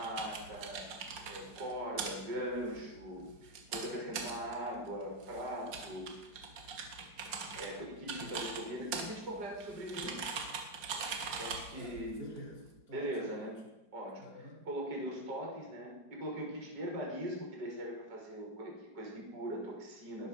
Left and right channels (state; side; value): late; left; 4.9 ms